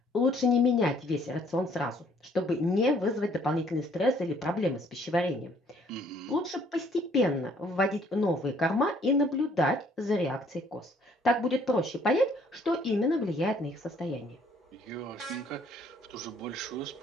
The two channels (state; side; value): normal; both; correlation 0.62